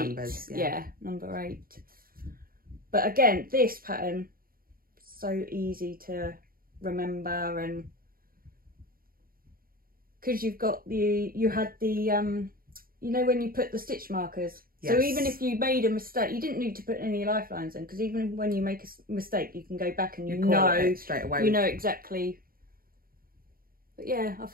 yeah, number 8. But again, this pattern so easy to remember, and because you had the you know when you put the stitch markers. Yes. So even if you made a mistake, you didn't need to put any lifelines in, because even when you make a mistake, you can go back and you know straight away. You know exactly. But yeah, I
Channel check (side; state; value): left; late; 0.42 ms